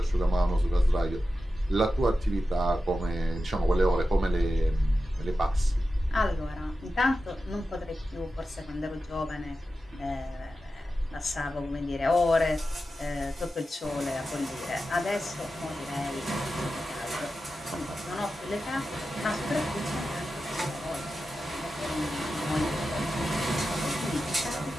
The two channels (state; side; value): normal; both; correlation 0.92